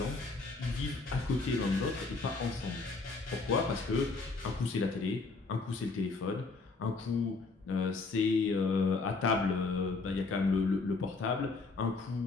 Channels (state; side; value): quieter; right; 3.9 dB